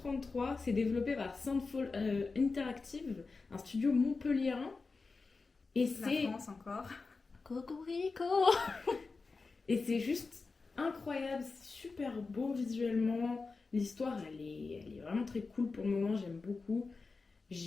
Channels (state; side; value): quieter; right; 4.2 dB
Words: C'est développé par Soundfall Interactive, un studio montpelliérain. Et La c'est France encore. Cocorico. Et c'est juste incroyable, c'est super beau visuellement. L'histoire, elle est vraiment très cool pour le moment, j'aime beaucoup.